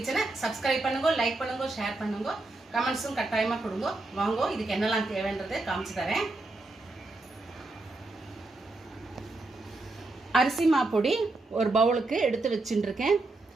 சப்ஸ்கிரைப் பண்ணுங்க, லைக் பண்ணுங்க, ஷேர் பண்ணுங்க, கமெண்ட்ஸும் கட்டாயமாக கொடுங்க. வாங்க, இதுக்கு என்னெல்லாம் தேவைன்றதை காமிச்சு தரேன். அரிசி மாப்பொடி ஒரு பவுலுக்கு எடுத்து வச்சுட்டுருக்கேன்.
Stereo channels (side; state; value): left; quieter; 3.1 dB